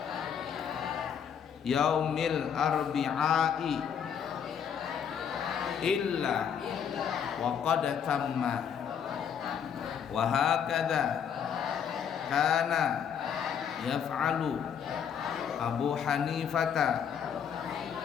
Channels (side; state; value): right; quieter; 7.9 dB